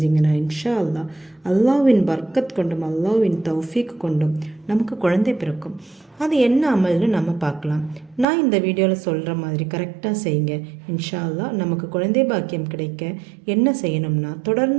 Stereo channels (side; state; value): left; drops out; at 8.2 s